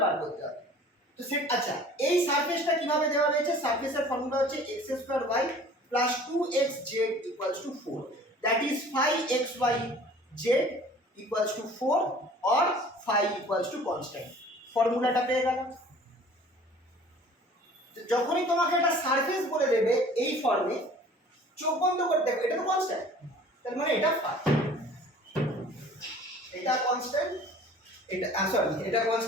বার করতে হবে। তো সেট আচ্ছা এই সারফেসটা কিভাবে দেওয়া রয়েছে, সারফেসের ফর্মুলা হচ্ছে x square y plus 2xz equals to 4, that is 5xyz equals to 4 or 5 equals to constant. ফর্মুলাটা পেয়ে গেল। যখনই তোমাকে একটা সারফেস বলে দেবে এই ফর্মে, চোখ বন্ধ করে দেখো এটা তো কনস্ট্যান্ট, তার মানে এটা 5, এটা কনস্ট্যান্ট, এটা সরি এটা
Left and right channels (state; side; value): normal; both; correlation 0.48